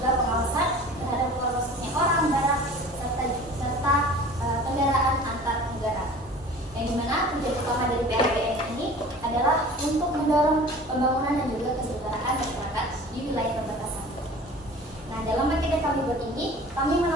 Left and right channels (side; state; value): both; normal; correlation 0.43